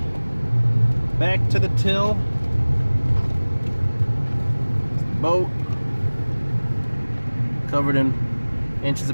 back to the till. Boat covered in inches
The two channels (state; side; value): inverted; both; correlation -1.00